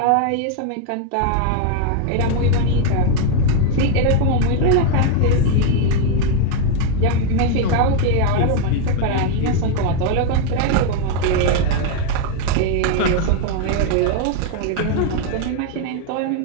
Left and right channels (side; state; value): both; different; correlation 0.00